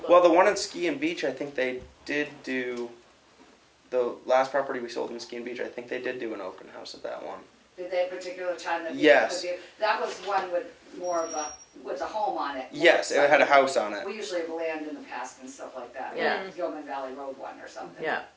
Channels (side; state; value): both; identical; correlation 1.00